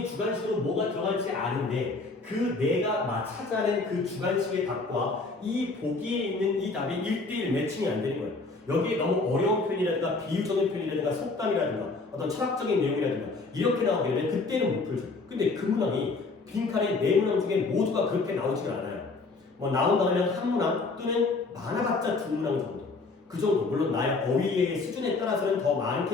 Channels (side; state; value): right; quieter; 3.7 dB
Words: 주관식으로 뭐가 들어갈지 아는데 그 내가 찾아낸 그 주관식의 답과 이 보기에 있는 이 답이 1대1 매칭이 안 되는 거예요. 여기에 너무 어려운 표현이라든가 비유적인 표현이라든가 속담이라든가 어떤 철학적인 내용이라든가 이렇게 나오게 되면 그때는 못 풀죠. 근데 그 문항이 빈칸의 네 문항 중에 모두가 그렇게 나오지가 않아요. 뭐 나온다면 한 문항 또는 많아봤자 두 문항 정도. 그 정도. 물론 나의 어휘의 수준에 따라서는 더